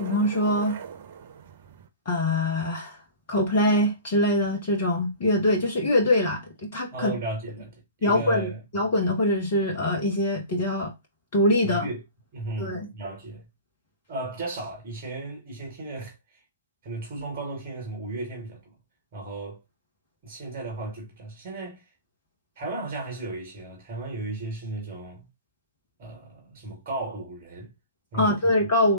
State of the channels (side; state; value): both; inverted; correlation -0.38